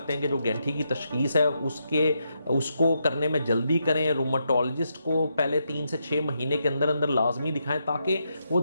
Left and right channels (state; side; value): inverted; both; correlation -0.82